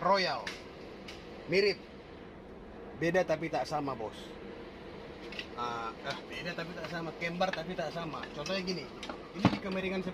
Mirip, beda tapi tak sama bos. Beda tapi tak sama, kembar tapi tak sama. Contohnya gini, ini dikemiringan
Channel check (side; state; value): both; identical; correlation 1.00